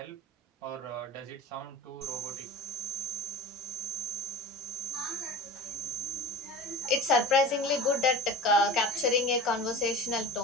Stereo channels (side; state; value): both; normal; correlation 0.35